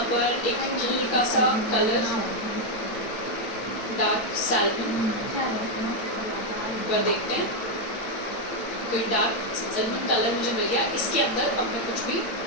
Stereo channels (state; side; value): late; right; 8.6 ms